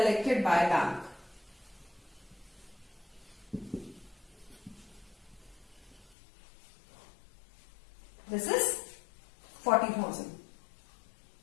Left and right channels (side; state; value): right; drops out; at 6.2 s